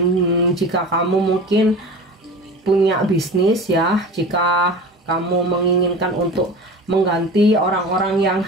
jika kamu mungkin punya bisnis ya, jika kamu menginginkan untuk mengganti orang-orang yang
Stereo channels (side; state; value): both; normal; correlation 0.34